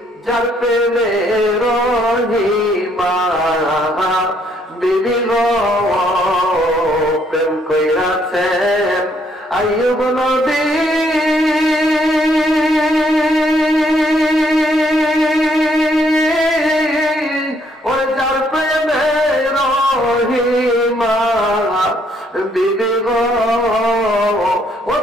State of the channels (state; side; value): normal; both; correlation 0.69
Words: যার প্রেমে রহিমা বিবি গো। প্রেম কইরাছেন আইয়ুব নবী, ওই যার প্রেমে রহিমা বিবি গো, ও